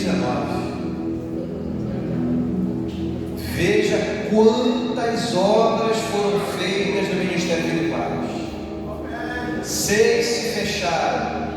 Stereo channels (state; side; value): identical; both; correlation 1.00